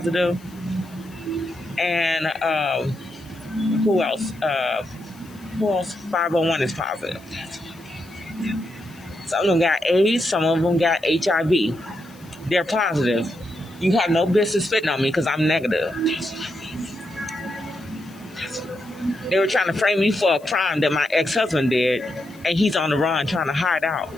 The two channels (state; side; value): noise; left; hiss, 27 dB below the sound